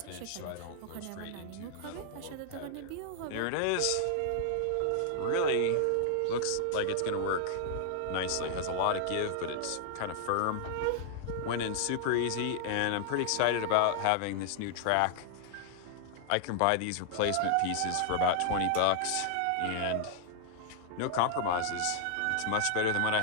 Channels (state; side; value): different; both; correlation 0.00